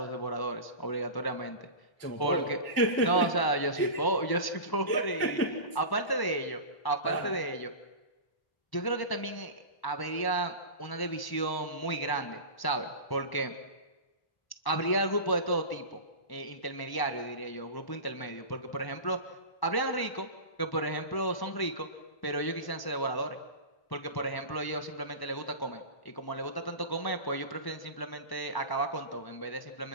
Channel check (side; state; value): right; late; 1.1 ms